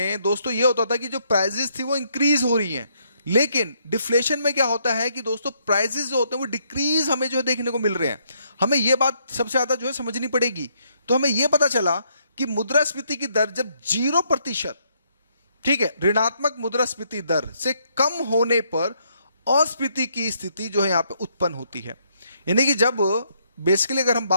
दोस्तों ये होता था कि जो प्राइजेस थी वो इंक्रीज हो रही हैं, लेकिन डिफ्लेशन में क्या होता है कि दोस्तों प्राइसेस जो होते हैं वो डिक्रीज हमें जो है देखने को मिल रहे हैं। हमें यह बात सबसे ज्यादा जो है समझनी पड़ेगी। तो हमें यह पता चला कि मुद्रास्फीति की दर जब 0% ठीक है, ऋणात्मक मुद्रास्फीति दर से कम होने पर अस्फीति की स्थिति जो है यहां पे उत्पन्न होती है। यानी कि जब बेसिकली अगर हम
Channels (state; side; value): inverted; both; correlation -0.72